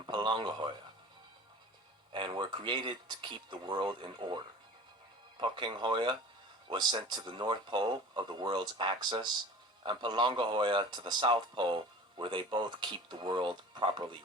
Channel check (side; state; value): both; normal; correlation 0.40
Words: Palangahoya, and were created to keep the world in order. Pokenghoya was sent to the North Pole of the world's axis, and Palangahoya to the South Pole, where they both keep the world properly